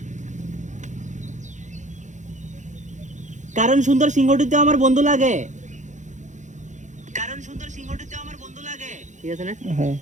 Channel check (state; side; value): late; left; 0.35 ms